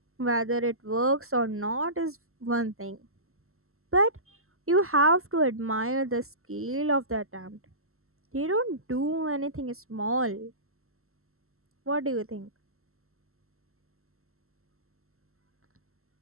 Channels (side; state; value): left; late; 0.62 ms